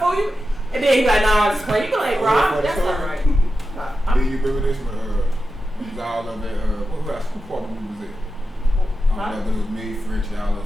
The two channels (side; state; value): both; normal; correlation 0.91